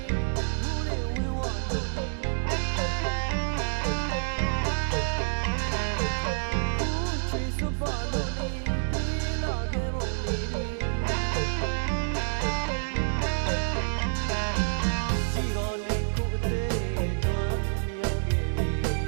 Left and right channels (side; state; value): left; silent; digital silence